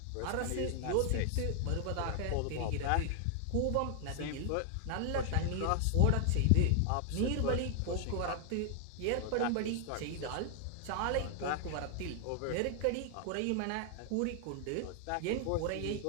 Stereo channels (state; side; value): different; both; correlation 0.00